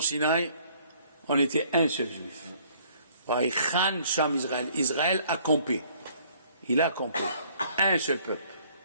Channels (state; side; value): inverted; both; correlation -0.60